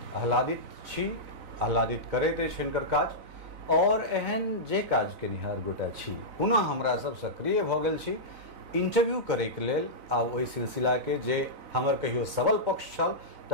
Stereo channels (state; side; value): late; left; 4.0 ms